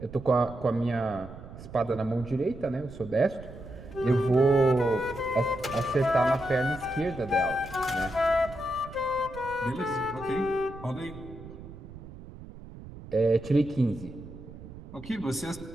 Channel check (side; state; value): right; noise; rumble, 15 dB below the sound